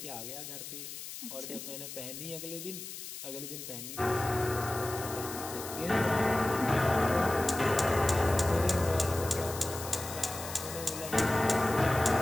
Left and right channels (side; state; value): left; noise; hiss, 10 dB below the sound